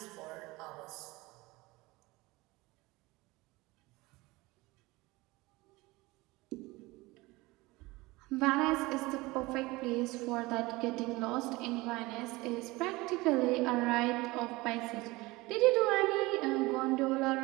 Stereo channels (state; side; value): quieter; left; 21.7 dB